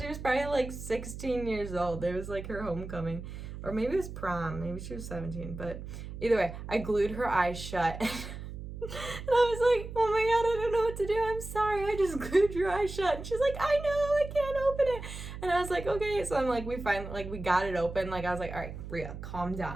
was probably like 16 years old. It was like her homecoming, or maybe it was prom. Maybe she was 17, but either way, I glued her eyes shut. And I was like, oh my God, I don't know what to do. I'm sorry. I just glued your eyes shut. And she's like, I know, I can't open it. And I was like, okay. So I'm like, we got it open. Like, I was like, all right, Bria, calm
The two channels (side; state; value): right; noise; hum, 10 dB below the sound